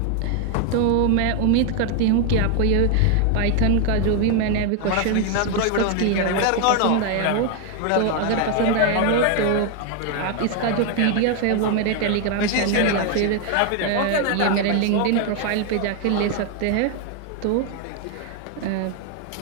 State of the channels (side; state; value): both; different; correlation 0.01